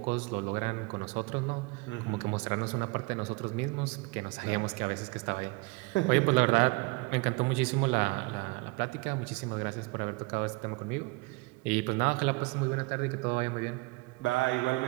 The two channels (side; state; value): left; quieter; 25.9 dB